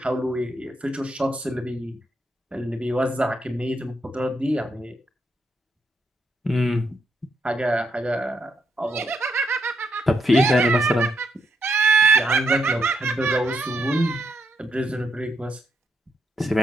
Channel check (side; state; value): both; normal; correlation 0.78